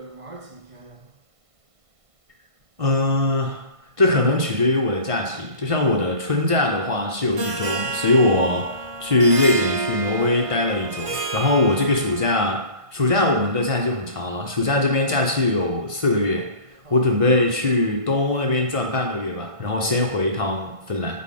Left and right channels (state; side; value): late; left; 1.5 ms